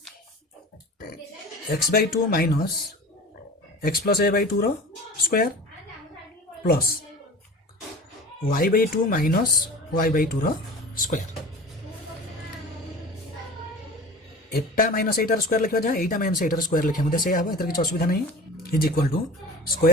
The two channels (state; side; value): normal; both; correlation 0.39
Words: x/2 minus x plus a/2 रो square plus y/2 minus y/2 रो स्क्वायर एटा माइनस एटार स्क्वायर लिखा जाए एटा माइनस एटार स्क्वायर लिखा मते से आबो एतर किछ असुविधा नहीं is equal to